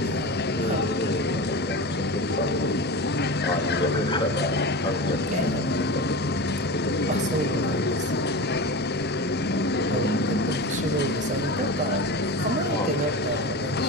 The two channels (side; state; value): both; normal; correlation 0.27